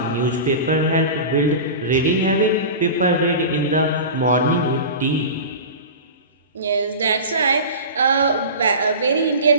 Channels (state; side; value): inverted; both; correlation -0.31